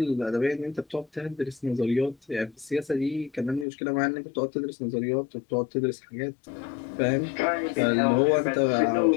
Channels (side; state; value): right; drops out; at 3.7 s